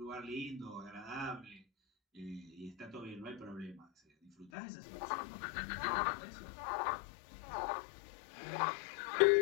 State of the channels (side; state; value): right; drops out; at 4.5 s